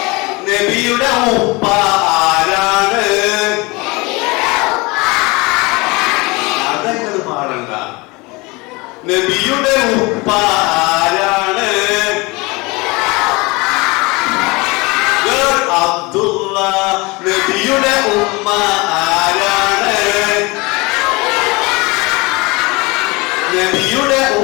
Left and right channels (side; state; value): right; quieter; 25.1 dB